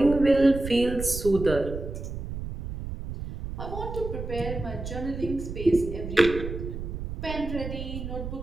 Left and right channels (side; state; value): right; noise; rumble, 7 dB below the sound